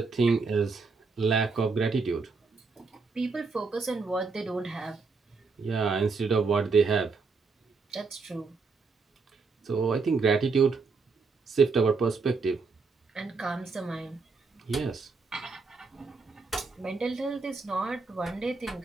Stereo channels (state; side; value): quieter; left; 4.4 dB